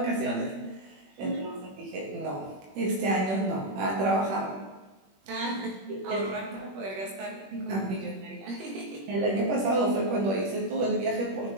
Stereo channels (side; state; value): left; late; 21 ms